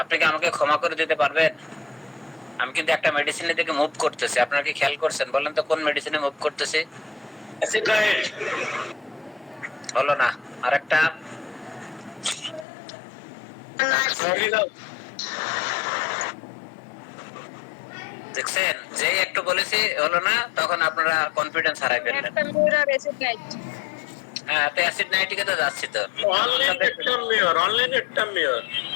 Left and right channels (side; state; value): right; drops out; at 12.7 s